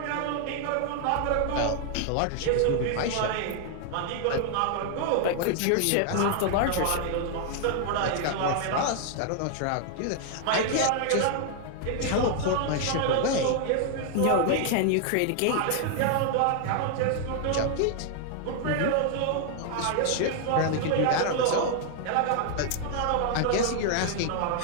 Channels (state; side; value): different; both; correlation 0.00